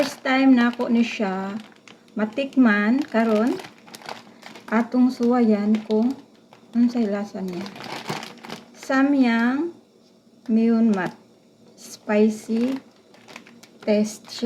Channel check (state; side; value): identical; both; correlation 1.00